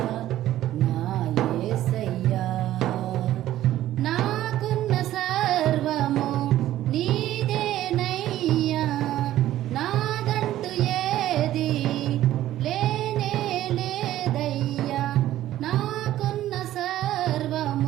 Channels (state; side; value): quieter; left; 13.6 dB